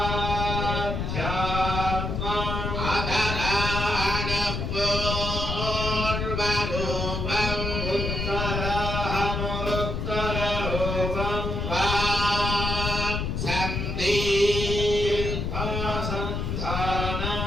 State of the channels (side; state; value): left; noise; rumble, 2 dB below the sound